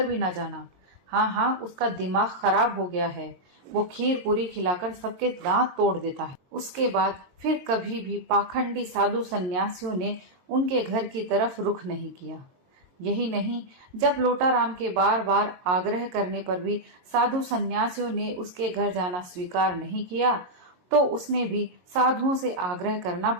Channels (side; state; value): left; late; 22 ms